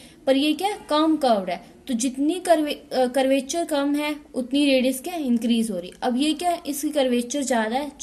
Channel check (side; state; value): both; identical; correlation 1.00